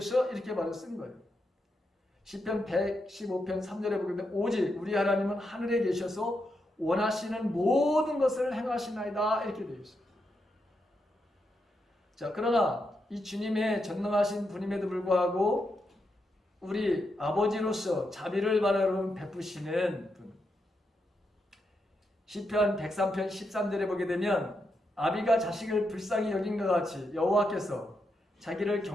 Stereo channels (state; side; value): normal; both; correlation 0.84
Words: 이렇게 바로 쓴 거예요. 시편 115편 3절에 보게 되면 오직 우리 하나님은 하늘에 계셔서 원하시는 모든 것을 행하시나이다, 이렇게 되어 있어요. 자, 그러나 이 주님의 전능하신 분임에도 불구하고 우리 아버지로서 자비를 바로 베푸시는 분. 시편 103편 13절에 보게 되면 아비가 자식을 불쌍히 여긴 것 같이 여호와께서 자기를